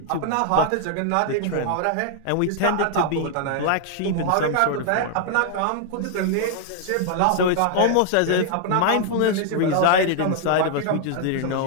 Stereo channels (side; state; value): both; different; correlation 0.00